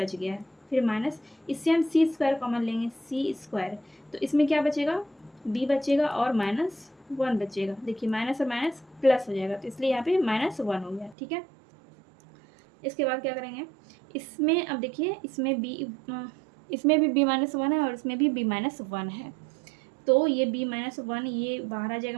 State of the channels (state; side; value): drops out; left; at 11.2 s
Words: गया है। फिर माइनस, इससे हम c² कॉमन लेंगे, c², तो इसमें क्या बचेगा, b बचेगा और माइनस 1 बचेगा। देखिए माइनस और माइनस प्लस हो जाएगा, तो इसलिए यहाँ पे माइनस 1 हो गया। ठीक है, इसके बाद क्या करेंगे, इसमें अब देखिए इसमें भी b माइनस 1 है और इसमें भी b माइनस 1 है, तो ये b माइनस 1 ये बाहर आ जाएगा,